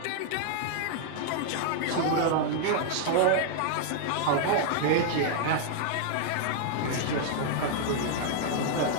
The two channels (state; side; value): different; both; correlation 0.00